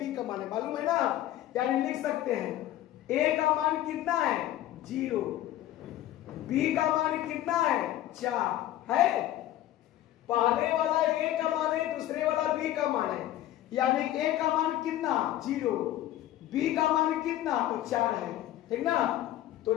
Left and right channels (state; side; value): quieter; right; 13.6 dB